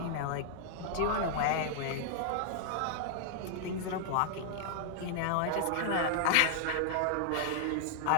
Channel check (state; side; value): different; both; correlation 0.00